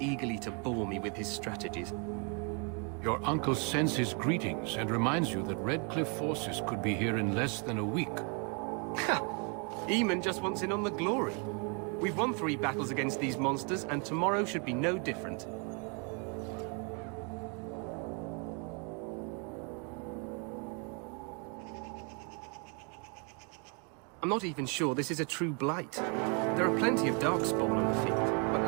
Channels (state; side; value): quieter; left; 36.2 dB